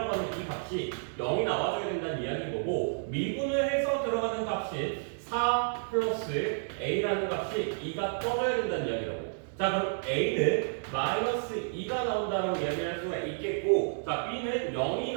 하는 이 값이 0이 나와줘야 된다는 이야기인 거고 미분을 해서 들어가는 값이 4 플러스 a라는 값이 2가 떠져야 된다는 이야기라고. 자, 그럼 a는 마이너스 2가 나온다라고 이야기할 수가 있겠고 자, b는 0이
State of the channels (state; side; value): silent; left; digital silence